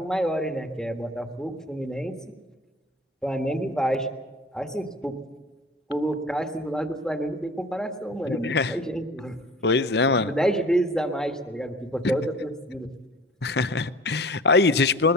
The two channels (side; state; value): both; normal; correlation 0.43